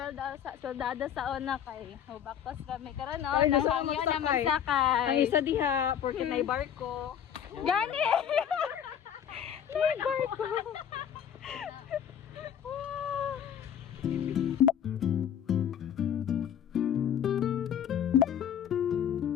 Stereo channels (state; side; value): quieter; right; 9.0 dB